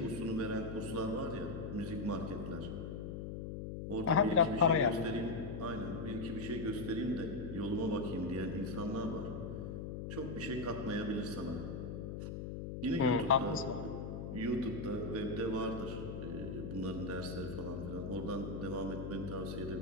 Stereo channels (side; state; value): left; noise; hum, 5 dB below the sound